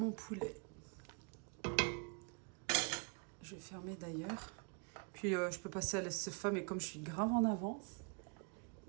poulet. Je vais fermer d'ailleurs. Puis je peux passer à la sefa, mais comme je suis grave en avance,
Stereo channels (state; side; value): quieter; left; 36.7 dB